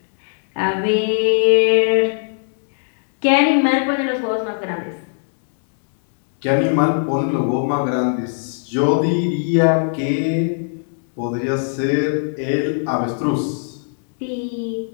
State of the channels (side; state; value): right; silent; 66 dB below the other